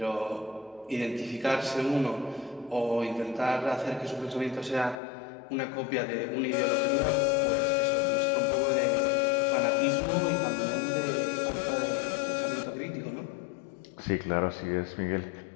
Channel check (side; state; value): right; drops out; at 5.0 s